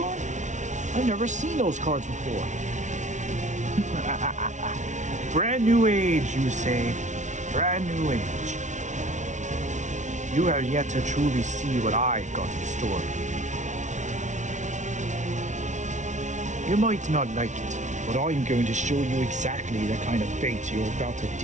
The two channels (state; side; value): late; left; 0.35 ms